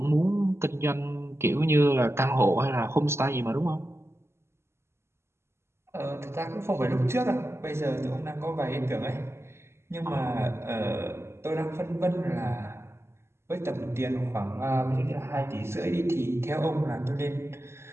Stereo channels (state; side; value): late; left; 0.12 ms